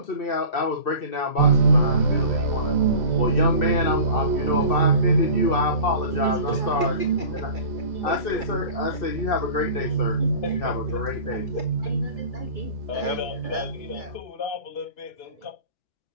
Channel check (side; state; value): right; late; 2.6 ms